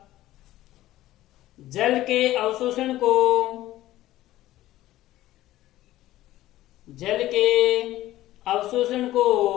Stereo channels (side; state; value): right; quieter; 15.2 dB